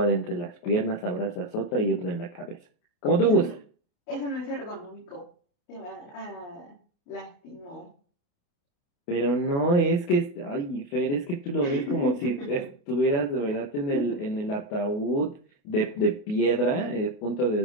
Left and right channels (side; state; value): right; late; 28 ms